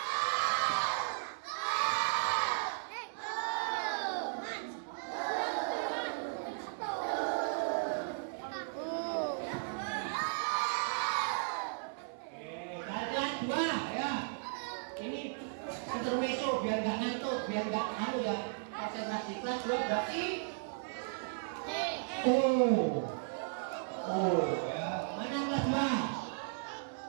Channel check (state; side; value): silent; left; 54 dB below the other